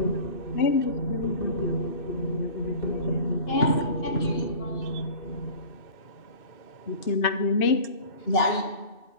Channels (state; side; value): late; right; 2.6 ms